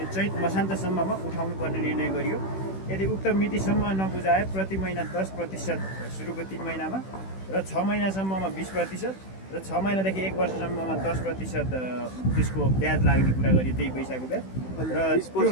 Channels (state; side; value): late; right; 16 ms